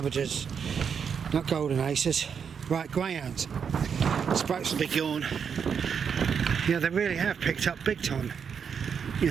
not golden aces, right, greyhounds. Sprouts will be gone. Yeah, they really have picked up big time, you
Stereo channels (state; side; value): quieter; left; 6.8 dB